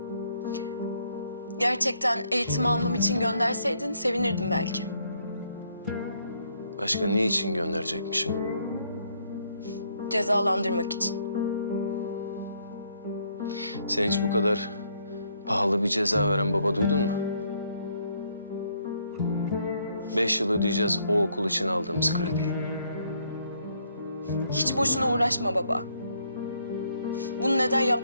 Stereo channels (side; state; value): both; inverted; correlation -0.71